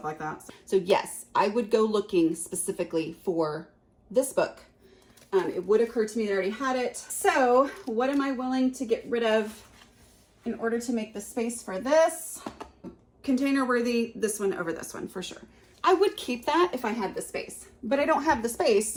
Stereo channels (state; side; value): identical; both; correlation 1.00